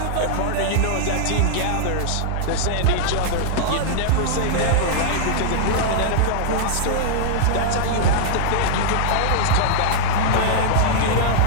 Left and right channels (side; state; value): both; different; correlation -0.02